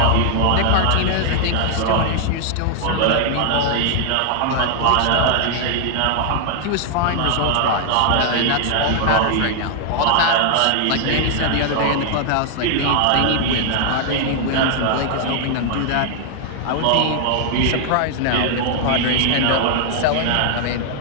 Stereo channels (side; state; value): both; different; correlation 0.00